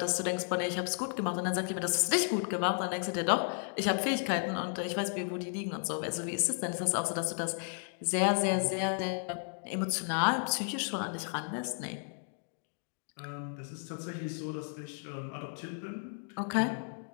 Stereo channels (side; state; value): right; silent; 55 dB below the other